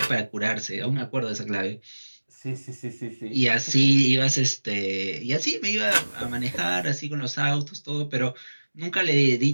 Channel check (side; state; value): both; inverted; correlation -1.00